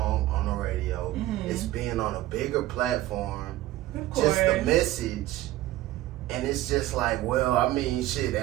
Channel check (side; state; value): left; quieter; 15.7 dB